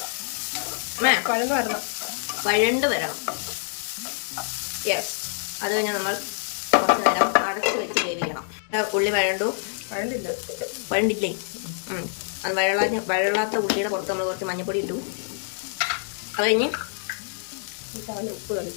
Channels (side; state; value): right; silent; digital silence